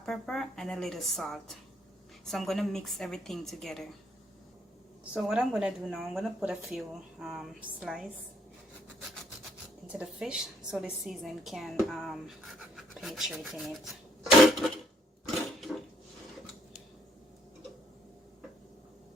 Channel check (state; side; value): normal; both; correlation 0.68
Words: pepper, and a little salt. So I'm gonna mix everything together. So what I'm gonna do now, I'm gonna put a few slices into the fish so the seasoning can penetrate in it.